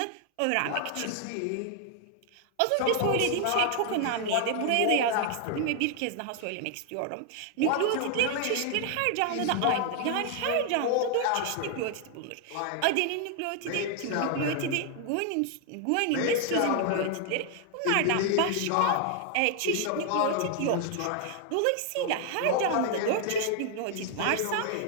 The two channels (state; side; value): different; both; correlation 0.00